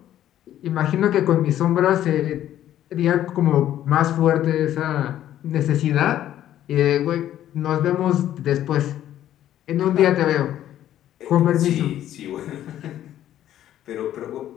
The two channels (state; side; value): quieter; right; 12.0 dB